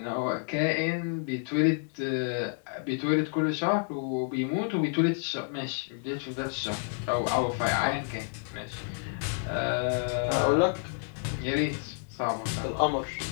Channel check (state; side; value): silent; right; digital silence